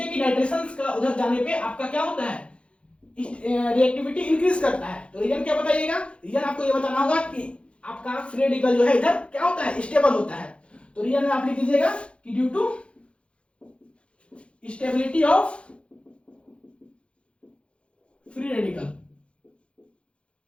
कि नाइट्रेशंस का उधर जाने पे आपका क्या होता है, रिएक्टिविटी इंक्रीज करता है, तो रीजन क्या बताइएगा। रीजन आपको ये बताना होगा कि आपका फ्री रेडिकल जो है इधर क्या होता है, स्टेबल होता है। तो रीजन में आप लिख दीजिएगा कि due to stability of free radical,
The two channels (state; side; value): late; right; 0.059 ms